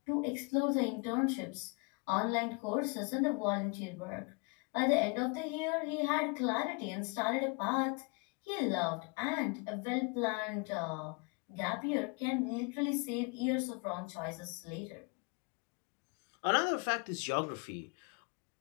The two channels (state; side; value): quieter; right; 32.5 dB